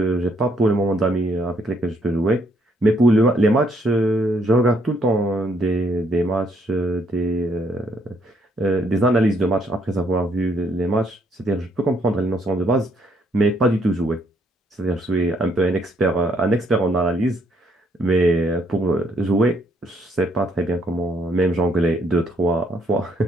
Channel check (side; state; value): both; normal; correlation 0.70